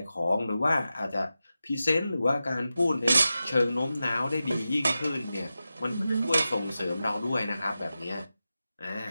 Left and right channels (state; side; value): inverted; both; correlation -0.92